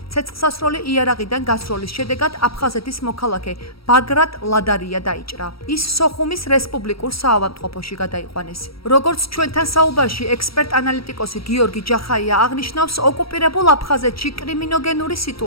ცეცხლსასროლი იარაღიდან გასროლის შედეგად აფხაზეთის მოქალაქე ბაგრატ ლადარია დაიჭრა. ის სოხუმის რესპუბლიკურ საავადმყოფოში გადაიყვანეს. როგორც ჩვენთან საუბარში ექსპერტ-ანალიტიკოსი გიორგი ჯახაია აღნიშნავს, ოკუპირებულ აფხაზეთში კრიმინოგენური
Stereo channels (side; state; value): right; late; 0.75 ms